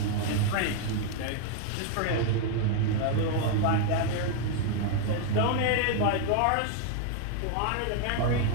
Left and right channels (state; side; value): different; both; correlation 0.00